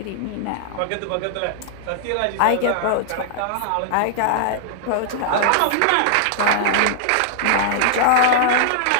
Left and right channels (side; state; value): both; different; correlation -0.01